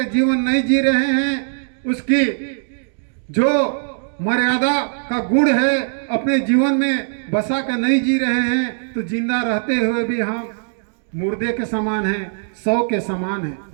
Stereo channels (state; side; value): silent; left; digital silence